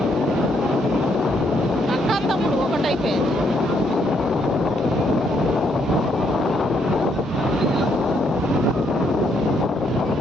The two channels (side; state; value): both; normal; correlation 0.73